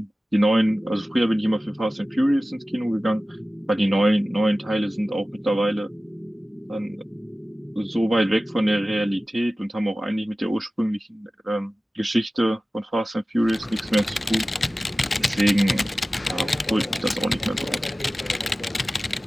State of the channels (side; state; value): both; normal; correlation 0.96